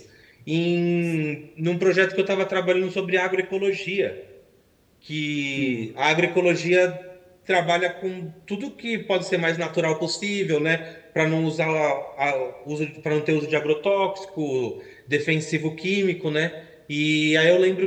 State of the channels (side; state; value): both; identical; correlation 1.00